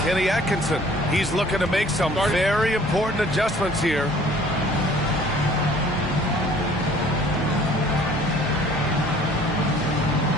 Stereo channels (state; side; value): normal; both; correlation 0.54